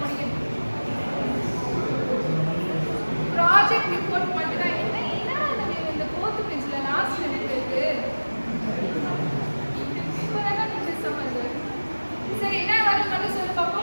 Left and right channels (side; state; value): both; inverted; correlation -1.00